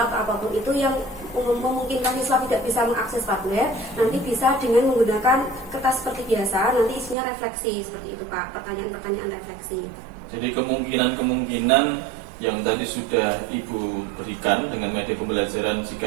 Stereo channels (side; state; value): left; drops out; at 7.2 s